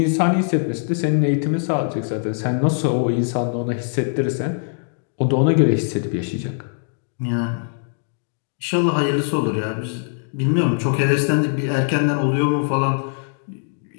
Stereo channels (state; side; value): silent; right; digital silence